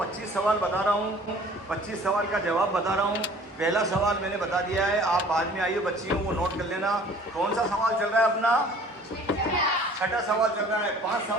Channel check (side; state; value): both; normal; correlation 0.50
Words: सवाल बता रहा हूँ, 25 सवाल का जवाब बता रहा हूँ। पहला सवाल मैंने बता दिया है, आप बाद में आइए बच्चियों, वो नोट कर लेना। कौन सा सवाल चल रहा है अपना? छठा सवाल चल रहा है। 5